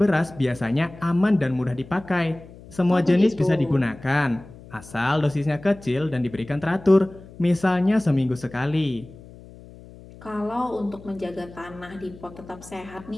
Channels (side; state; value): left; noise; hum, 19 dB below the sound